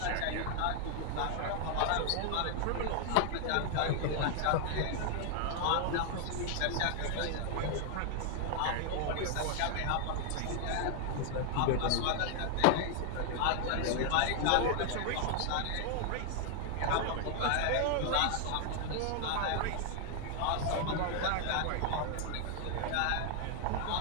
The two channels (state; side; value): different; both; correlation 0.00